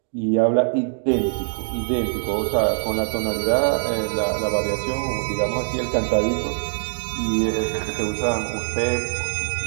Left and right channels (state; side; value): silent; left; digital silence